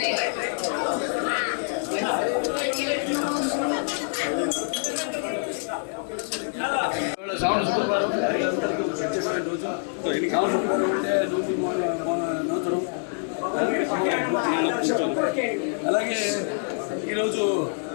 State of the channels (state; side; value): silent; right; 57 dB below the other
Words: శ్రావణ శుక్రవారం అందరికీ ప్రత్యేకమైన రోజు. శ్రావణ శుక్రవారం అంటే నూతనం. అలాగే ఈరోజు